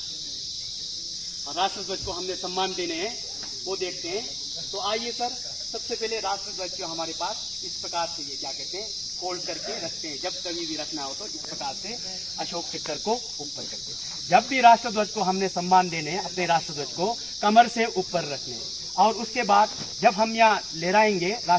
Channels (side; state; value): left; noise; rumble, 24 dB below the sound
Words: राष्ट्रध्वज को हमने सम्मान देने हैं वो देखते हैं। तो आइए सर, सबसे पहले राष्ट्रध्वज जो हमारे पास इस प्रकार से, ये क्या कहते हैं, फोल्ड करके रखते हैं। जब कभी भी रखना हो तो इस प्रकार से अशोक चक्र को ऊपर करते हैं। जब भी राष्ट्रध्वज को हमने सम्मान देने हैं, अपने राष्ट्रध्वज को कमर से ऊपर रखने हैं। और उसके बाद जब हम यहाँ लहराएंगे